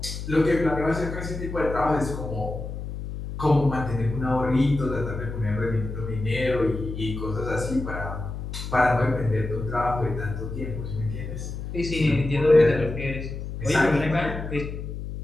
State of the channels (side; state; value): left; noise; hum, 7 dB below the sound